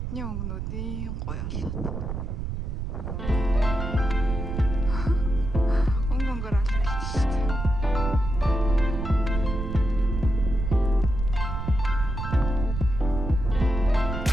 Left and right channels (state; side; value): noise; right; rumble, 4 dB below the sound